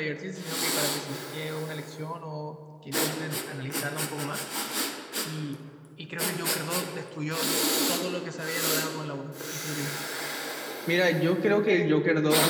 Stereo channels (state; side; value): identical; both; correlation 1.00